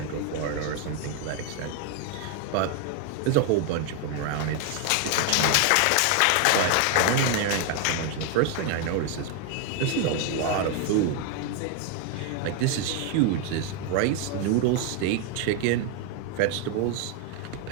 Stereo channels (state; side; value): different; both; correlation 0.01